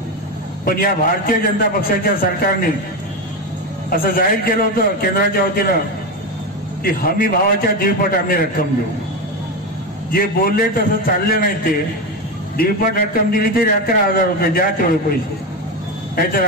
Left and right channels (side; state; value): both; normal; correlation 0.15